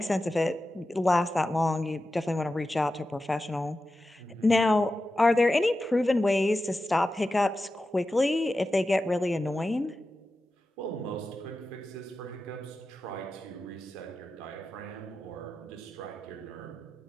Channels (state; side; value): normal; both; correlation 0.92